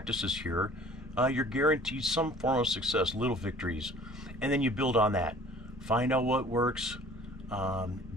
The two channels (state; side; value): normal; both; correlation 0.49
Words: here, you're guaranteed some form of success, little victories, and then you build on that. Find out what works,